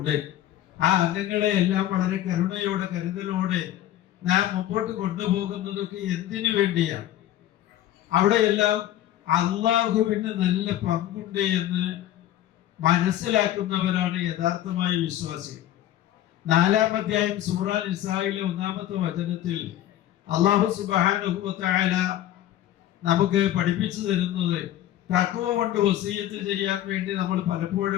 ആ അംഗങ്ങളെ എല്ലാം വളരെ കരുണയോടെ, കരുതലോടെ നാം മുമ്പോട്ട് കൊണ്ടുപോകുന്നതൊക്കെ എന്തിനു വേണ്ടിയാണ്? അവിടെയെല്ലാം അള്ളാഹുവിന് നല്ല പങ്കുണ്ട് എന്ന് മനസ്സിലാക്കുന്നവരാണ് യഥാർത്ഥമായ വിശ്വാസികൾ. 4-ാം അധ്യായം സൂറ നിസായിലെ 1-ാമത്തെ വചനത്തിൽ അല്ലാഹു സുബ്ഹാനഹു വ തആല നമുക്ക് പഠിപ്പിച്ചു തരുന്നത് തഖ്വ കൊണ്ട് വസിയത്ത് ചെയ്യാൻ വേണ്ടി നമ്മൾ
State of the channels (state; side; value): quieter; right; 12.8 dB